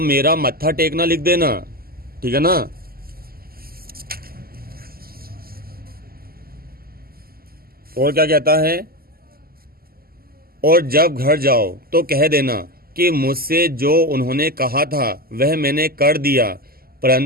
मेरा मत्था टेकना लिख देना, ठीक है ना। और क्या कहता है, और जब घर जाओ तो कह देना कि मुझसे जो उन्होंने कहा था वह मैंने कर दिया,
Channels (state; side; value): late; left; 0.43 ms